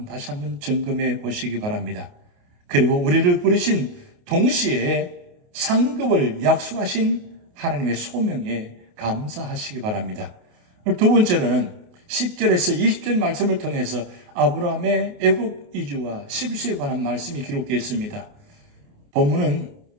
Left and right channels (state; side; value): late; left; 28 ms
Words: 다시 한번 점검해 보시기 바랍니다. 그리고 우리를 부르신 동시에 상급을 약속하신 하나님의 소명에 감사하시기 바랍니다. 두 번째로는 10절에서 20절 말씀을 통해서 아브라함의 애굽 이주와 실수에 관한 말씀이 기록되어 있습니다. 본문은